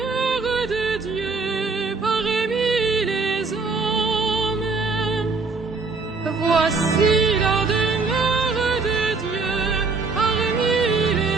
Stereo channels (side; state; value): left; quieter; 4.2 dB